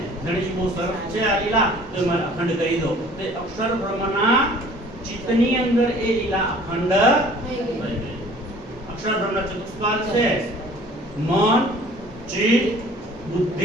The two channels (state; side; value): normal; both; correlation 0.51